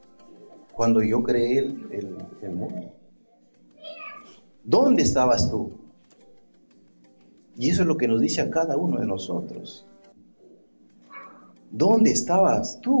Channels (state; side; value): inverted; both; correlation -1.00